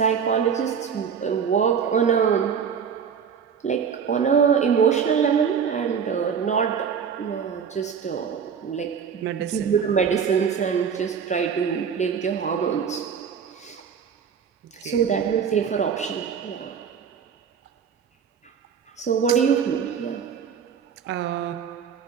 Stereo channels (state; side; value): quieter; left; 7.0 dB